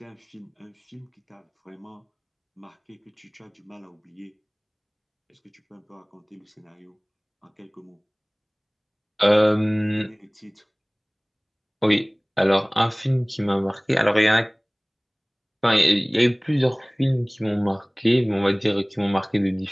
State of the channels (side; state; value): both; identical; correlation 1.00